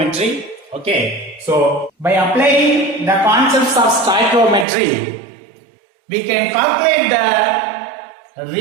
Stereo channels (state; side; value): drops out; left; at 4.7 s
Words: Okay, so by applying the concepts of stoichiometry, we can calculate the